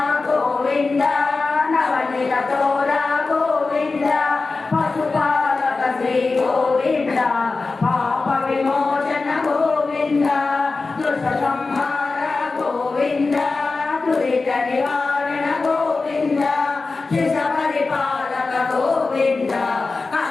గోవింద నవనీత తోర గోవింద పశుపాలక శ్రీ గోవింద పాప విమోచన గోవింద దుష్ట సంహార గోవింద దురిత నివారణ గోవింద శిశ పరిపాలక గోవింద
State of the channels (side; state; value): right; quieter; 3.9 dB